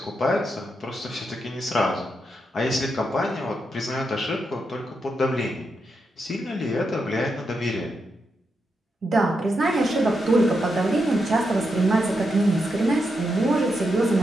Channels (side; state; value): both; normal; correlation 0.84